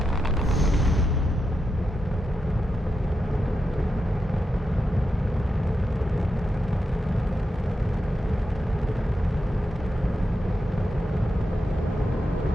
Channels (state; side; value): normal; both; correlation 0.87